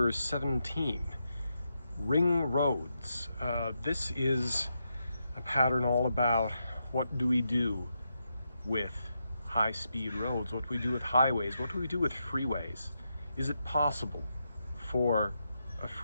17, Ring Roads. This is a pattern all about what do we do with high-speed roads, what do we do with highways, what do we do with freeways. Is it possible for a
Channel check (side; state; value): both; inverted; correlation -0.84